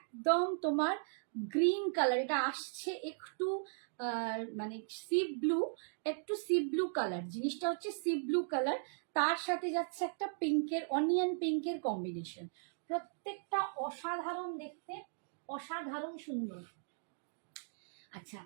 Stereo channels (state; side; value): silent; left; digital silence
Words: তোমার গ্রিন কালার, এটা আসছে একটু মানে সি ব্লু, একটু সি ব্লু কালার, জিনিসটা হচ্ছে সি ব্লু কালার, তার সাথে যাচ্ছে একটা পিঙ্কের, অনিয়ন পিঙ্কের কম্বিনেশন, প্রত্যেকটা অসাধারণ দেখতে, অসাধারণ সুন্দর। আচ্ছা